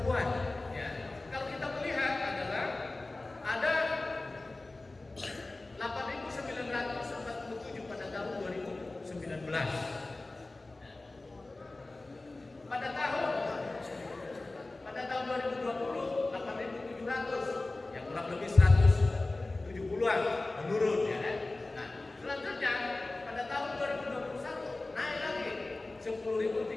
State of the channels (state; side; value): quieter; right; 3.0 dB